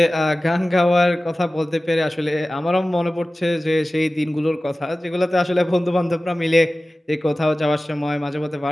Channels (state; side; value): normal; both; correlation 0.96